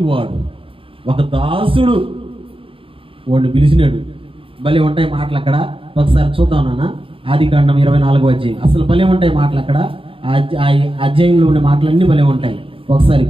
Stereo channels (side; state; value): left; late; 0.26 ms